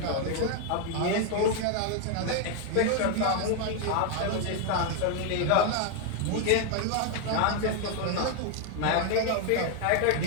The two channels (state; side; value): different; both; correlation 0.01